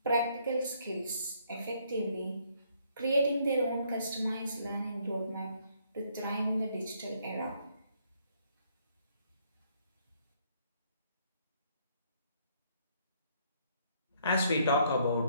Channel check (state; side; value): inverted; both; correlation -0.68